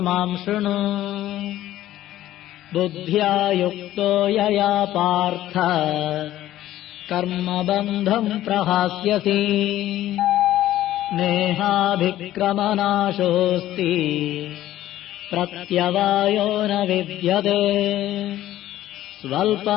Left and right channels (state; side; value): quieter; right; 13.9 dB